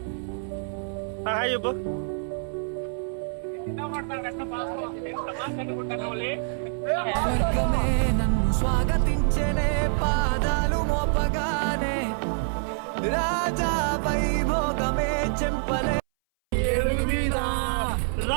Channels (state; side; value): silent; left; 59 dB below the other